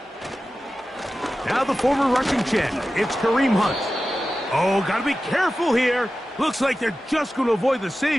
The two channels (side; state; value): both; normal; correlation 0.94